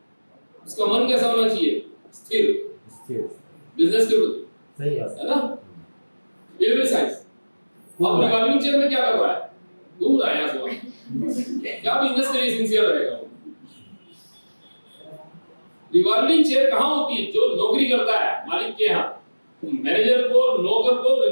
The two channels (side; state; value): both; inverted; correlation -1.00